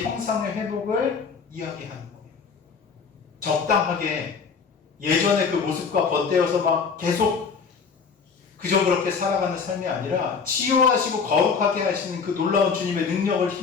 형상의 회복을 이야기하는 거예요. 적당하게 예전의 그 모습과 덧대어서 막 계속 그저 그렇게 살아가는 삶이 아니라 치유하시고 거룩하게 하시는 그 놀라운 주님의 능력을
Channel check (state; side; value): quieter; right; 5.6 dB